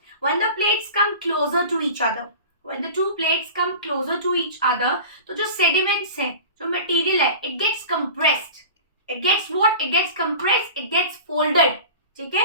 when the plates come closer to each other, when the two plates come closer to each other, तो जो sediments है, जो material है, it gets compressed. It gets what? It gets compressed. It gets folded. ठीक है?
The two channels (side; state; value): both; inverted; correlation -0.36